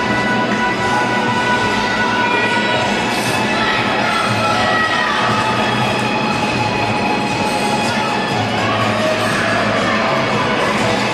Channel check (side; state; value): both; identical; correlation 1.00